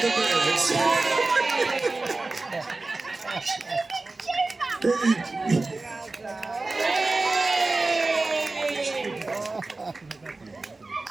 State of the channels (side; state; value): left; quieter; 3.4 dB